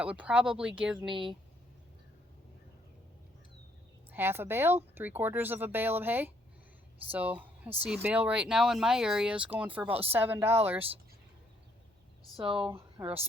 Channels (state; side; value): normal; both; correlation 0.69